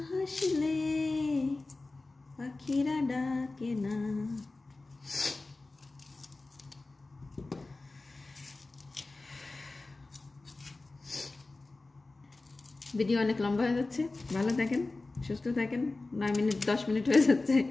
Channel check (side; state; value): right; quieter; 3.3 dB